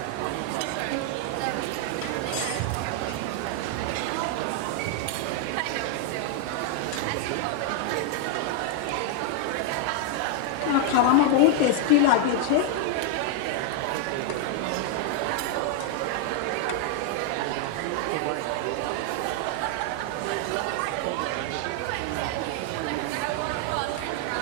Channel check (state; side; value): different; both; correlation 0.00